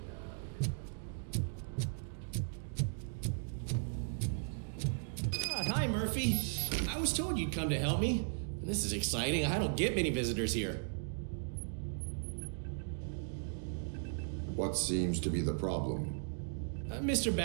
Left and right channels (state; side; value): silent; left; digital silence